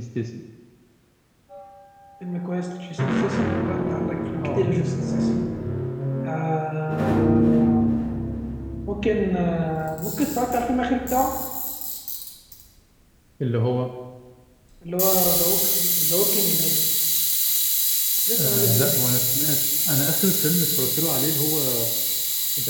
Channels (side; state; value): both; identical; correlation 1.00